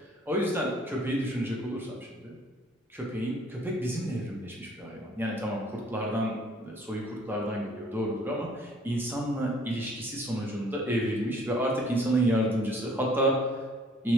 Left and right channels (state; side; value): normal; both; correlation 0.57